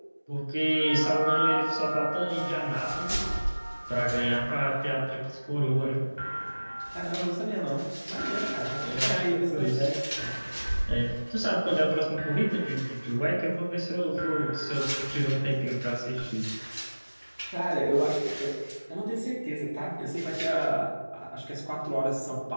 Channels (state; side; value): inverted; both; correlation -1.00